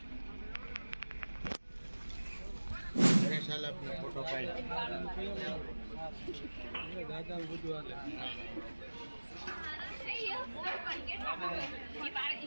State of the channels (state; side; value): inverted; both; correlation -1.00